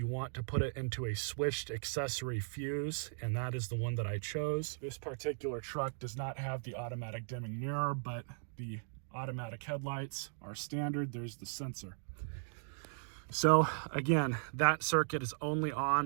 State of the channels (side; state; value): left; silent; digital silence